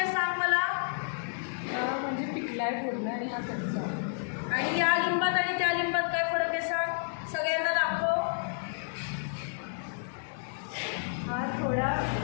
सांग मला? म्हणजे पिकलाय पूर्ण आणि हा कच्चा. आणि या लिंबात आणि त्या लिंबात काय फरक आहे सांग? सगळ्यांना दाखव. हा थोडा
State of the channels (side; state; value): right; silent; 57 dB below the other